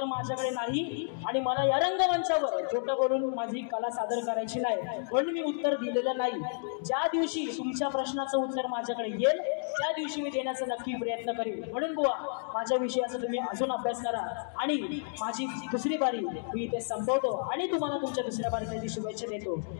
माझ्याकडे नाही आणि मला या रंगमंचावर छोटं करून माझी कला सादर करायची नाही म्हणून मी उत्तर दिलेलं नाही ज्या दिवशी तुमच्या प्रश्नाचं उत्तर माझ्याकडे येईल त्या दिवशी मी देण्याचा नक्की प्रयत्न करेन म्हणून बुवा माझ्या विषयाचा तुम्ही अजून अभ्यास करा आणि माझी दुसरी बारी मी इथे संपवतो आणि तुम्हाला तुमच्या दुसऱ्या बारीसाठी शुभेच्छा देतो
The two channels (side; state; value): right; silent; digital silence